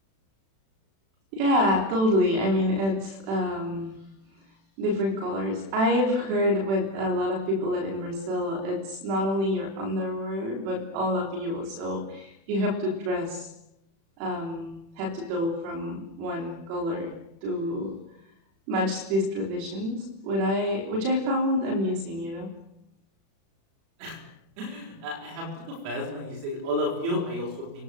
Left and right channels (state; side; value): late; left; 36 ms